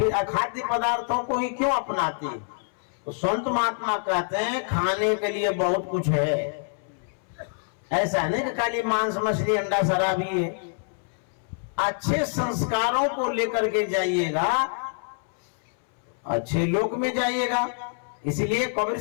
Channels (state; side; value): silent; right; 61 dB below the other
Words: अखाद्य पदार्थों को ही क्यों अपनाते हैं? तो संत महात्मा कहते हैं खाने के लिए बहुत कुछ है। ऐसा नहीं कि खाली मांस मछली अंडा शराब ही है। अच्छे संस्कारों को लेकर के जाइएगा, अच्छे लोक में जाइएगा। इसलिए कबीर